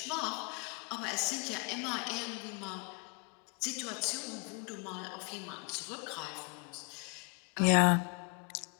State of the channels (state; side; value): quieter; right; 35.3 dB